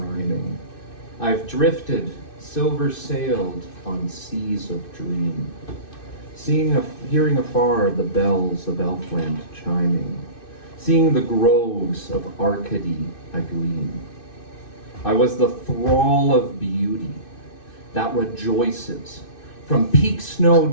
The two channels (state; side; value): late; right; 2.6 ms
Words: I've drifted, silver-sailed on seas of dream, hearing afar the bells of Elfland chiming, seeing the groves of Arcady agleam. I was the thrall of beauty that rejoices, from peak snow